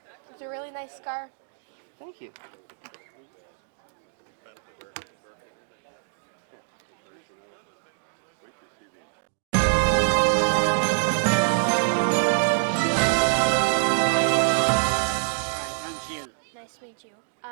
It's a really nice car. Thank you. Nice to meet you.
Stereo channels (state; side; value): silent; left; digital silence